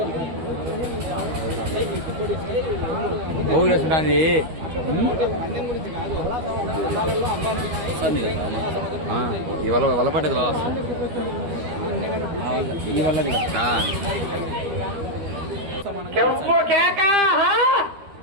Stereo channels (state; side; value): late; left; 13 ms